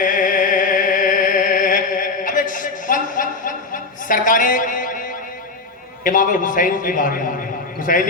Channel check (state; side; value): quieter; right; 3.7 dB